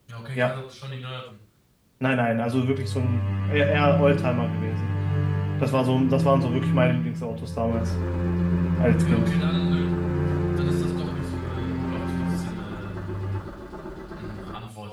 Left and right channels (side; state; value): both; identical; correlation 1.00